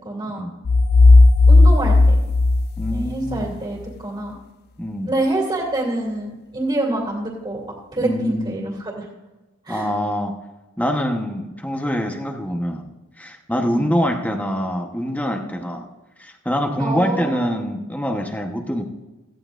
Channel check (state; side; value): normal; both; correlation 0.89